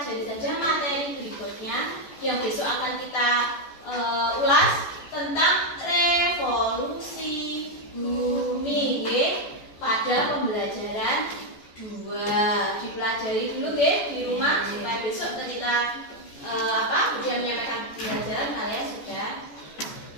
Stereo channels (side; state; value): right; late; 14 ms